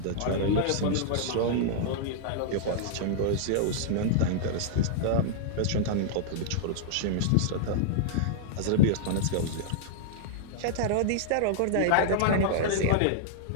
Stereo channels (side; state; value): both; different; correlation -0.01